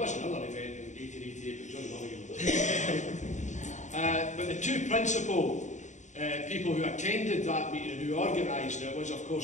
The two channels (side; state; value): right; late; 0.35 ms